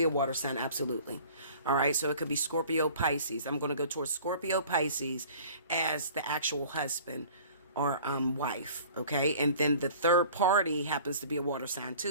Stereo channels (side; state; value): both; inverted; correlation -0.47